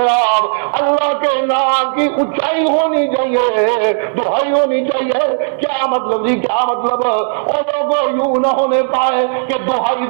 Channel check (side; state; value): left; silent; digital silence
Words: اللہ کے نام کی اونچائی ہونی چاہیے، دہائی ہونی چاہیے۔ کیا مطلب جی، کیا مطلب، اور لوگوں یوں نہ ہونے پائے کہ دہائی